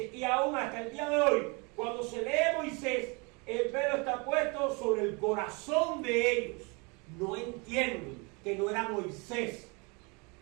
y aún hasta el día de hoy, cuando se lee Moisés, el velo está puesto sobre el corazón de ellos. No entienden que no era Moisés.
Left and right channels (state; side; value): quieter; left; 30.1 dB